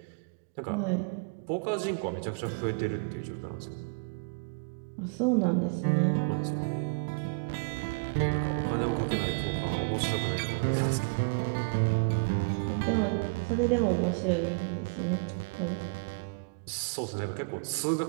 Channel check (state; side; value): quieter; left; 35.2 dB